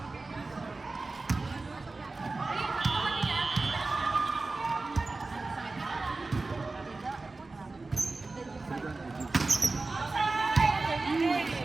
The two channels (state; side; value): quieter; left; 3.5 dB